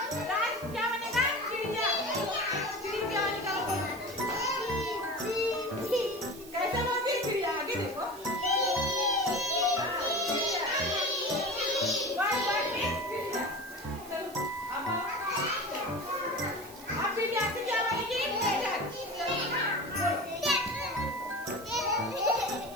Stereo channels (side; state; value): right; noise; hiss, 18 dB below the sound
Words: राज क्या बनेगा? चिड़िया। चिड़िया निकालो, बोलो। कैसे बोलती है चिड़िया? आगे देखो। चलो अब चिड़िया से क्या बनेगी? मेढक।